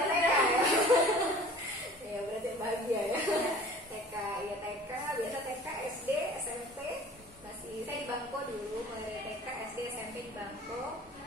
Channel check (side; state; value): both; normal; correlation 0.45